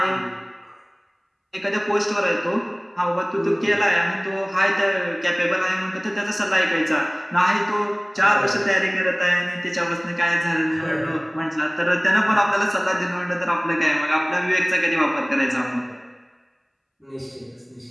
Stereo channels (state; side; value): identical; both; correlation 1.00